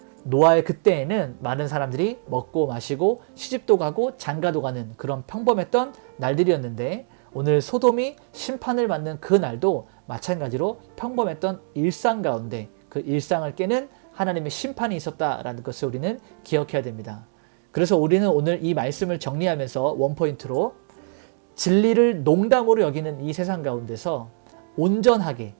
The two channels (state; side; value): silent; left; digital silence